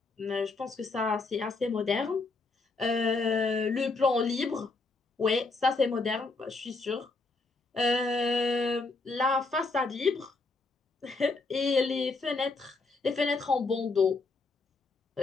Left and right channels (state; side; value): quieter; right; 3.7 dB